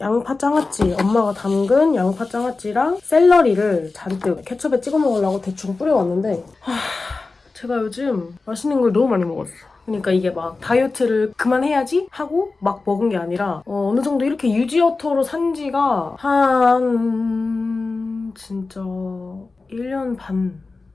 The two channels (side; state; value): right; quieter; 3.8 dB